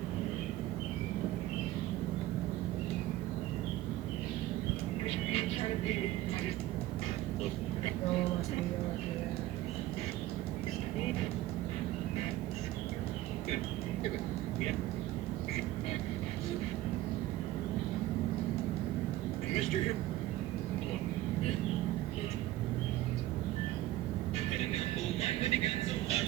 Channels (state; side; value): quieter; left; 15.5 dB